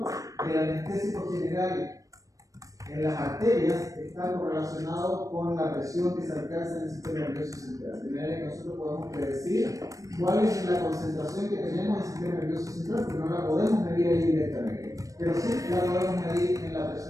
del anestésico general en las arterias está correlacionado con la presión que se alcanza en el sistema nervioso central. De manera que nosotros podemos predecir cuál es la concentración que tenemos en el sistema nervioso central, porque no la podemos medir ahí directamente, pero sí la podemos medir en la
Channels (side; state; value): left; late; 0.16 ms